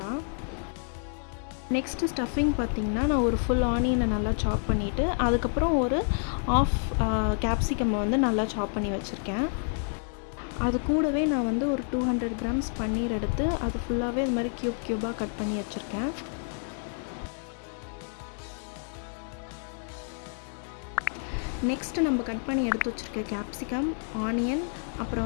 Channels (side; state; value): right; silent; 59 dB below the other